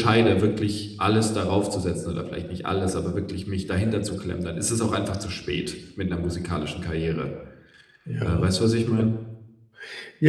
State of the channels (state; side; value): identical; both; correlation 1.00